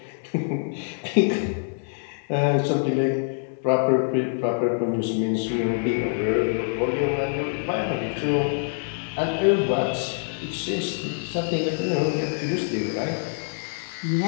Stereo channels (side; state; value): right; silent; digital silence